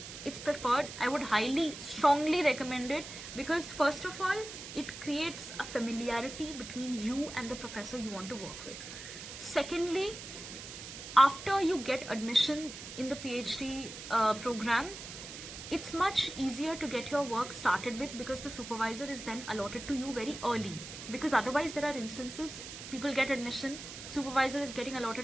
it's preferred. I would highly, strongly recommend it, because first of all, it creates a familiarity between you and the professor you want to work with. Secondly, after you get admission in the PhD program, it's much easier to get your work started with, because the supervisor is then allotted to you very early. Because otherwise there are instances people get admission, supervisor is getting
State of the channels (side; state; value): right; noise; hiss, 11 dB below the sound